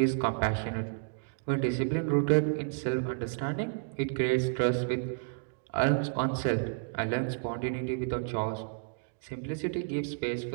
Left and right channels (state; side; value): silent; left; digital silence